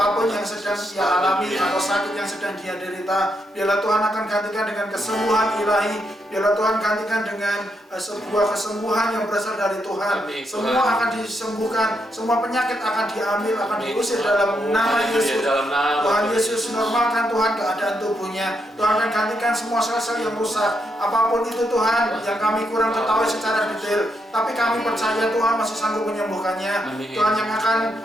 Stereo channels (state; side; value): normal; both; correlation 0.80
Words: yang sedang dia alami atau sakit yang sedang dia derita. Biarlah Tuhan akan gantikan dengan kesembuhan ilahi. Biarlah Tuhan gantikan dengan sebuah kesembuhan yang berasal dari Tuhan. Amin, Semua Tuhan. akan disembuhkan, semua penyakit akan diambil, akan Amin, diusir Tuhan. dalam nama Haleluya, Yesus. dalam nama Tuhan Tuhan. Yesus normalkan Tuhan keadaan tubuhnya. Tuhan akan gantikan semua sel-sel yang rusak. Apapun itu Tuhan yang kami kurang ketahui secara detail, tapi kami percaya Tuhan masih sanggup menyembuhkannya. Amin. Tuhan yang akan